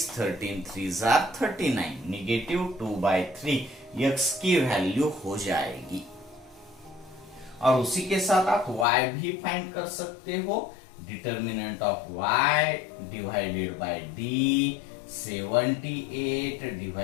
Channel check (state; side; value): drops out; right; at 8.8 s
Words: 13 3s are 39, -2/3 x की वैल्यू हो जाएगी। और उसी के साथ आप y भी फाइंड कर सकते हो। Determinant of y divided by d, 78